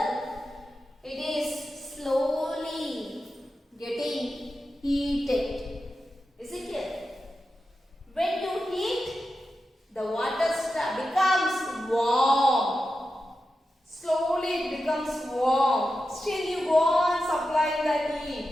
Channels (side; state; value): both; normal; correlation 0.91